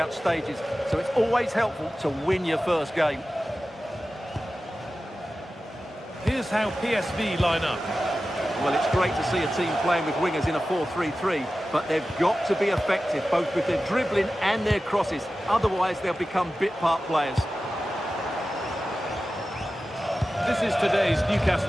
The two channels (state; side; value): normal; both; correlation 0.94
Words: stages, so it's always helpful to win your first game. Here's how PSV line up. Well, it's great to see a team playing with wingers in a 4-3-3, but they've got to be effective, both with their dribbling and their crosses. Otherwise, they'll become bit-part players. This is today's